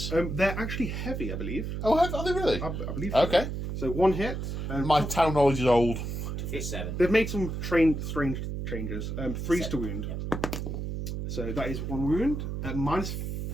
They're actually heavy, I believe. Oh, are they really? I believe so. Okay. So 1 hit. My town knowledge is old. For 7. They've made some strange changes. 3s to wound. Yep. So that is 1 wound. Minus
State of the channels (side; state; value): right; noise; hum, 4 dB below the sound